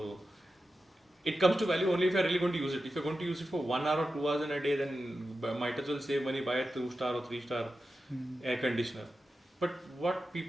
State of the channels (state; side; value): normal; both; correlation 0.91